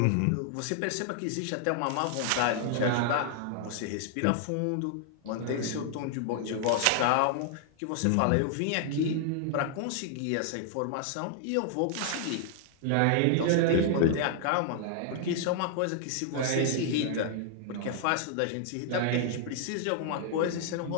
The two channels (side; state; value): both; different; correlation -0.01